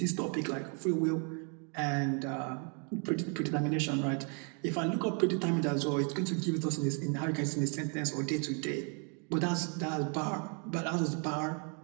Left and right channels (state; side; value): quieter; left; 38.3 dB